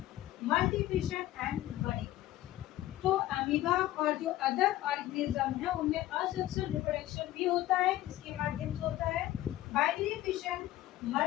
multiplication and budding। तो अमीबा और जो अदर ऑर्गेनिज्म है उनमें असेक्सुअल रिप्रोडक्शन भी होता है, किसके माध्यम से होता है, बाइनरी फिशन,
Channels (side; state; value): right; quieter; 14.9 dB